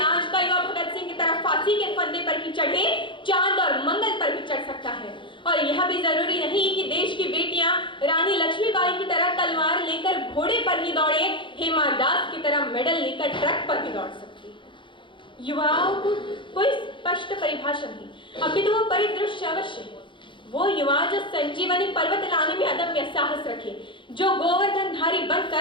का युवा भगत सिंह की तरह फांसी के फंदे पर ही चढ़े, चांद और मंगल पर भी चढ़ सकता है। और यह भी जरूरी नहीं कि देश की बेटियां रानी लक्ष्मीबाई की तरह तलवार लेकर घोड़े पर ही दौड़े, हेमा दास की तरह मेडल लेकर ट्रक पर भी दौड़ सकती है। युवाओं को कोई स्पष्ट परिभाषा नहीं, अपितु वो परिदृश्य अवश्य है। वो युवा जो संजीवनी पर्वत लाने में अदम्य साहस रखे, जो गोवर्धनधारी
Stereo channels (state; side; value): late; right; 0.24 ms